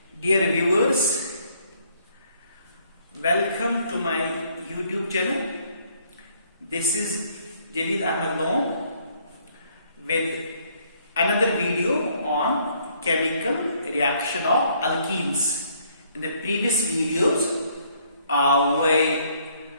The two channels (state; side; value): inverted; both; correlation -0.66